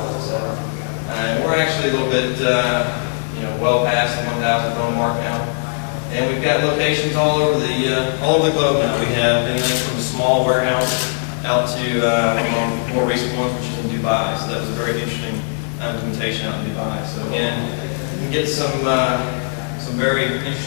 And we're actually a little bit, well past the 1,000 phone mark now. And we've got locations all over the globe now. We have anything from a small warehouse out to more recent ones, which is in Dubai. So that was a very interesting implementation out in Dubai. So again, you can get some very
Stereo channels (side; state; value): right; silent; digital silence